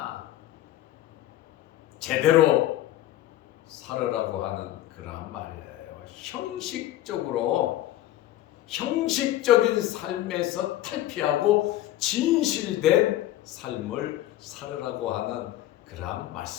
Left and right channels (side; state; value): right; quieter; 14.1 dB